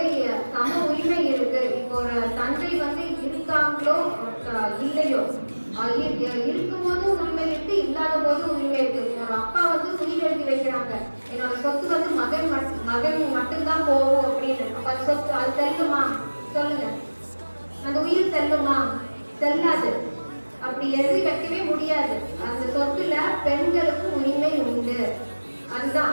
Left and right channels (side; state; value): both; inverted; correlation -1.00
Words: சம உரிமை இருக்கு. இப்போ ஒரு தந்தை வந்து இருக்காங்களோ இல்லையோ, இருக்கும்போது உரிமை இருக்கு, இல்லாத போது உரிமை இருக்கு. ஒரு அப்பா வந்து உயிர் எழுதி வைக்கிறாங்க, என்னோட சொத்து வந்து மகன் மட்டும்தான் போகும் அப்படின்னு. அப்ப அது சொத்து அது செல்லுமா? சொல்லுங்க, அந்த உயிர் செல்லுமா? செல்லாது. அப்படி எழுதி வைக்கவே முடியாது. அந்த சொத்துல பெண்களுக்கு உரிமை உண்டு. அதுதான்